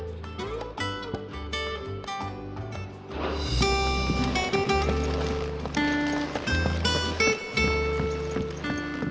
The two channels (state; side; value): identical; both; correlation 1.00